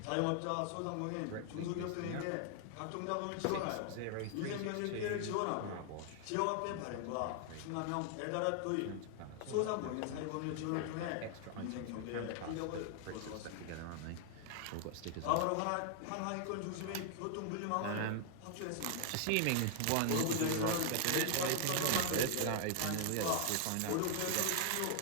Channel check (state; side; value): different; both; correlation 0.00